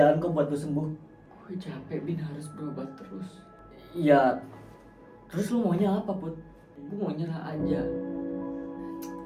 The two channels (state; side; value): identical; both; correlation 1.00